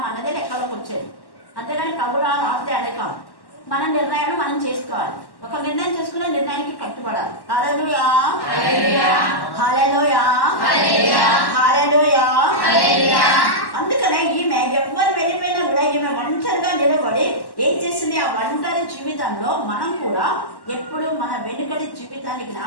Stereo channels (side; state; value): right; late; 1.1 ms